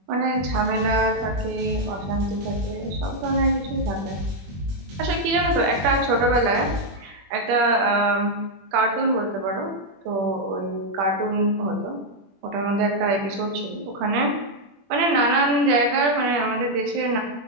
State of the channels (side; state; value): left; late; 21 ms